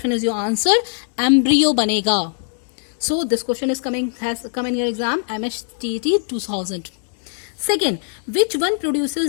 is your answer, embryo बनेगा. So this question has come in your exam MHTT 2000. Second, which one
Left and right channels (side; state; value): right; silent; digital silence